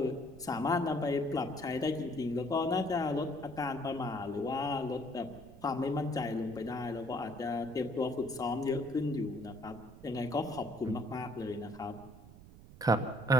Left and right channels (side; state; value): right; noise; rumble, 18 dB below the sound